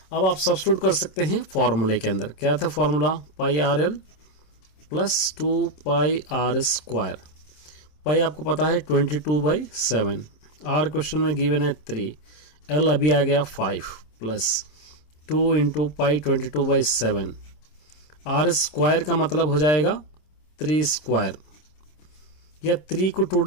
अब आप सब्स्टिट्यूट कर सकते हैं फॉर्मूले के अंदर। क्या था फॉर्मूला? πRL plus 2πr²। पाई आपको पता है 22/7, आर क्वेश्चन में गिवन है 3, एल अभी आ गया 5 plus 2 into pi 22/7, r square का मतलब हो जाएगा 3 स्क्वायर, या 3 को 2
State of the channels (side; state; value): right; late; 27 ms